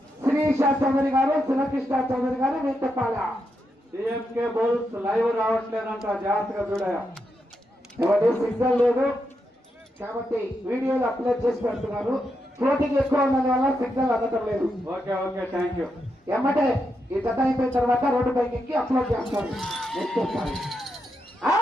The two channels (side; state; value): both; normal; correlation 0.84